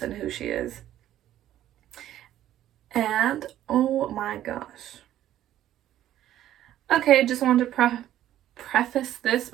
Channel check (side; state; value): left; quieter; 12.5 dB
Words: and who she is. And oh my gosh. Okay, just wanted to preface this